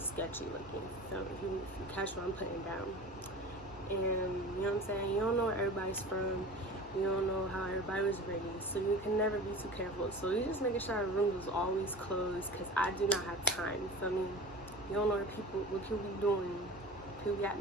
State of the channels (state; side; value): normal; both; correlation 0.36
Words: looking. So if you catch what I'm putting down. And you know what I'm saying? You don't know where everybody's from. You don't know how everybody was raised. So you can never be too careful. So you just making sure our room was always closed, because I do not have time. You feel me? You don't know what people be doing. People be out